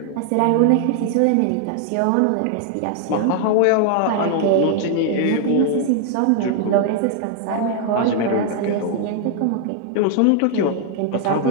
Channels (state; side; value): different; both; correlation 0.00